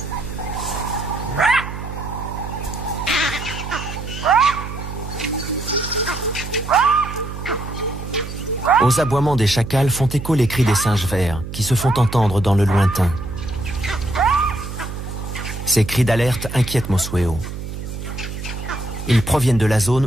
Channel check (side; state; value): right; noise; hum, 9 dB below the sound